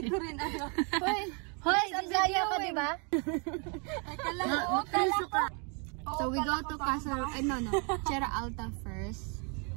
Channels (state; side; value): quieter; left; 36.1 dB